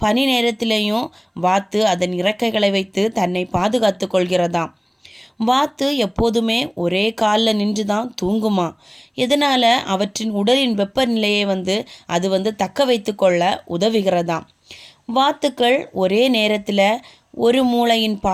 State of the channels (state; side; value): identical; both; correlation 1.00